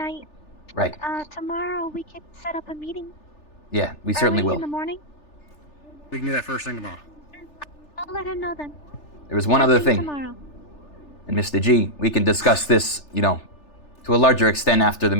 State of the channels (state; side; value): late; right; 3.4 ms